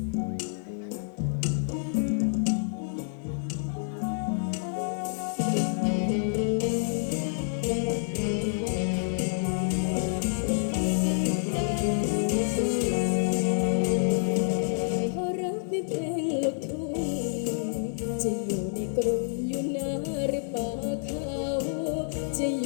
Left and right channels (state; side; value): silent; right; 59 dB below the other